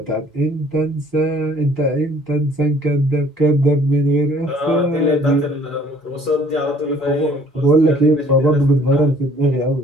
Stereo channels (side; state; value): both; normal; correlation 0.57